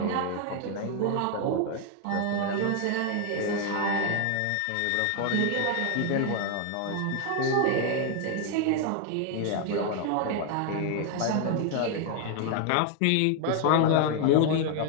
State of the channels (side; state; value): both; different; correlation 0.00